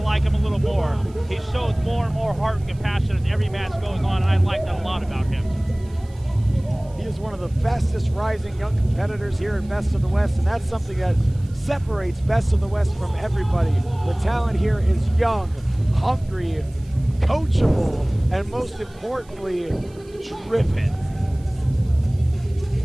him a little more. He shows more and more heart and compassion as every match goes on, and I like that a lot about him. He is one of the fastest rising young competitors here at Best of the West, and that's something that separates Best of the West from everybody. The talent here is young, hungry, coachable, and most importantly, driven.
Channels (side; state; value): right; noise; hiss, 28 dB below the sound